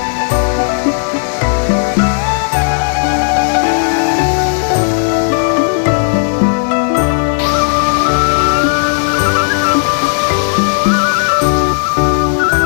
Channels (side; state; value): right; silent; digital silence